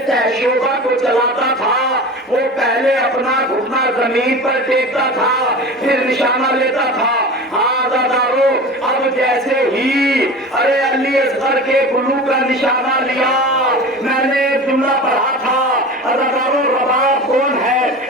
شعبہ کو چلاتا تھا وہ پہلے اپنا گھٹنا زمین پر ٹیکتا تھا پھر نشانہ لیتا تھا. ہاں عزادارو اب جیسے ہی علی اصغر کے گلو کا نشانہ لیا, میں نے ایک جملہ پڑھا تھا عزادارو رباب کون ہے؟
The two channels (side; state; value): both; normal; correlation 0.33